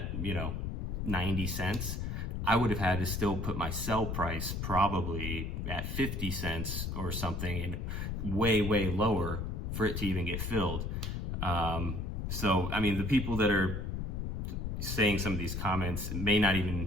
you know, 90 cents, I would have had to still put my sell price probably at 50 cents or something, and way lower for it to even get filled. So I mean, the people that are saying some of these comments may not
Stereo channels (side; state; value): left; noise; rumble, 3 dB below the sound